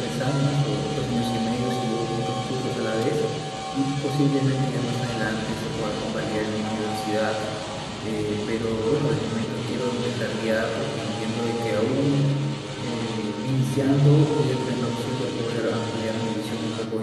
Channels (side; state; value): both; identical; correlation 1.00